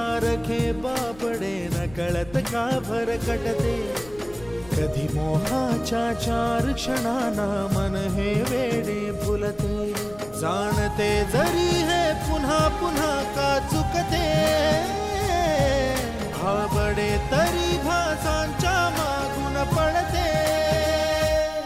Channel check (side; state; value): left; noise; rumble, 21 dB below the sound